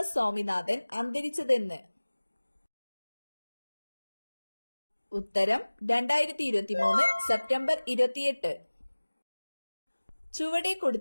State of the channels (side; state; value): both; inverted; correlation -1.00